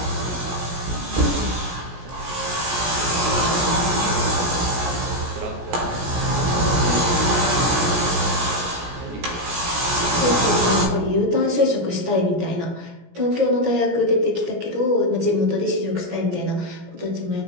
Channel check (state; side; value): late; left; 17 ms